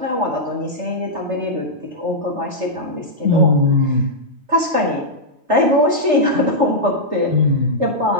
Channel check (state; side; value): late; left; 3.4 ms